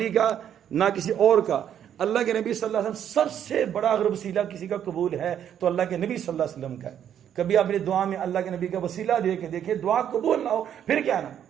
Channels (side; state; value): left; quieter; 9.6 dB